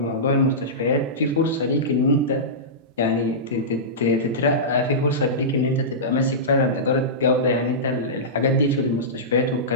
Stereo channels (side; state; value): both; normal; correlation -0.17